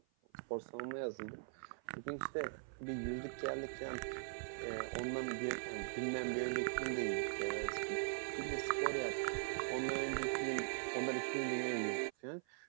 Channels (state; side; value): silent; left; 50 dB below the other